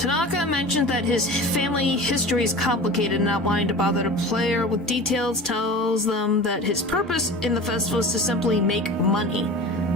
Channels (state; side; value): normal; both; correlation 0.35